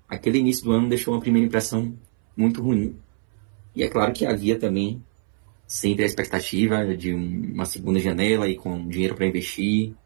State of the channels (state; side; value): silent; left; 63 dB below the other